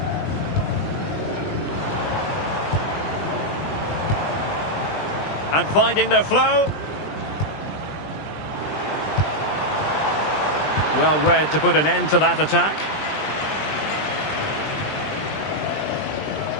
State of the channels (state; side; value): late; right; 20 ms